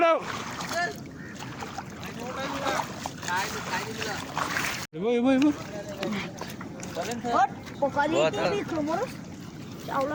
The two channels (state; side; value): identical; both; correlation 1.00